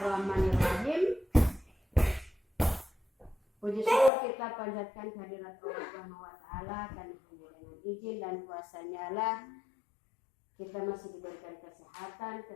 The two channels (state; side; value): drops out; right; at 4.1 s